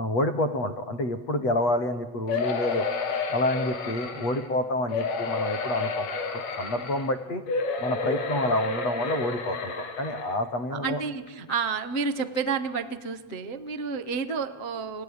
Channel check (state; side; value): late; right; 8.1 ms